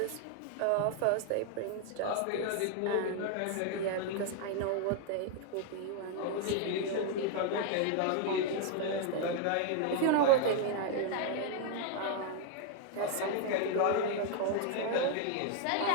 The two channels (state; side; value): different; both; correlation 0.00